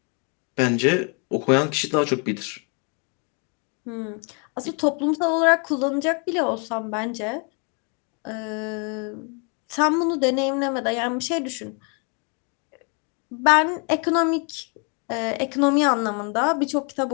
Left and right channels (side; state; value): right; quieter; 36.3 dB